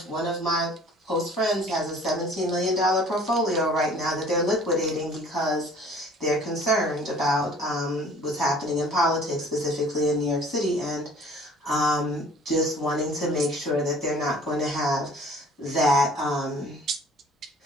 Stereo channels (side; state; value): both; normal; correlation 0.51